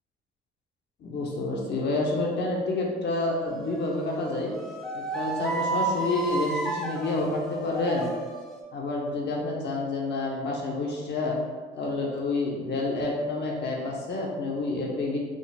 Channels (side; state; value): both; normal; correlation 0.35